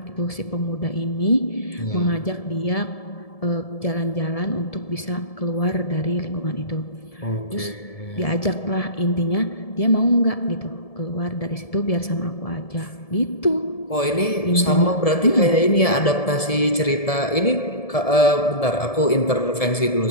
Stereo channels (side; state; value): right; late; 1.7 ms